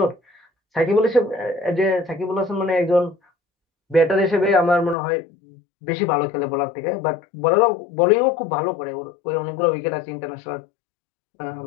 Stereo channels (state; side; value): drops out; right; at 5.0 s